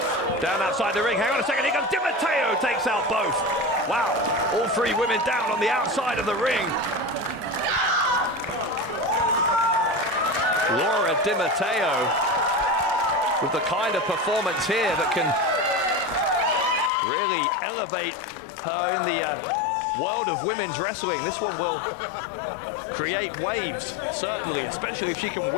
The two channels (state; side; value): drops out; right; at 16.9 s